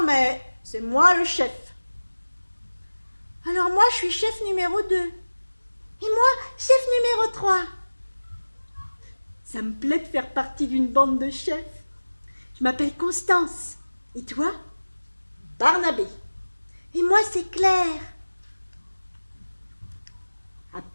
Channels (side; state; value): both; inverted; correlation -1.00